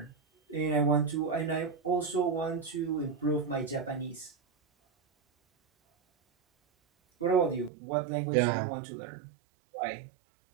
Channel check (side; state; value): left; drops out; at 7.7 s